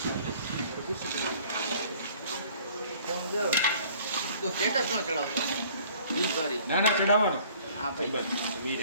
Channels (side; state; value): both; inverted; correlation -0.54